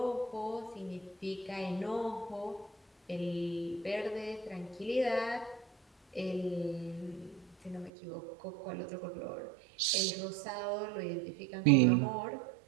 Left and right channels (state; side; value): drops out; left; at 7.9 s